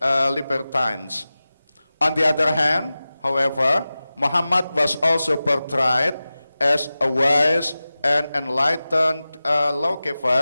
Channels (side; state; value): both; inverted; correlation -0.96